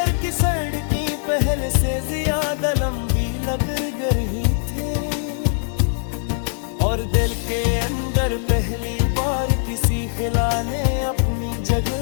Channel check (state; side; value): silent; right; 61 dB below the other